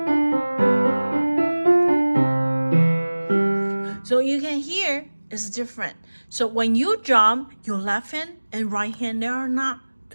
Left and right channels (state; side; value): inverted; both; correlation -1.00